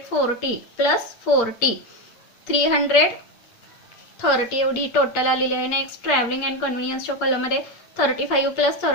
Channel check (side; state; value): right; late; 8.5 ms